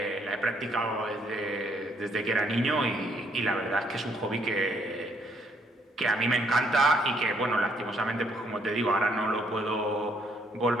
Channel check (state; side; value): normal; both; correlation 0.69